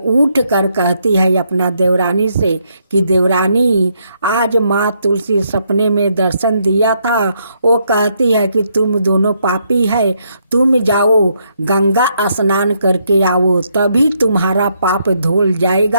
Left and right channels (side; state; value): both; inverted; correlation -0.75